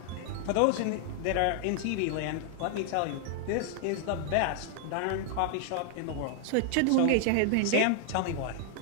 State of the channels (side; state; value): both; different; correlation 0.00